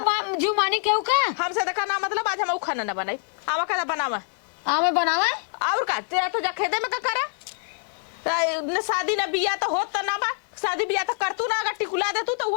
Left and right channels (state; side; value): silent; right; 62 dB below the other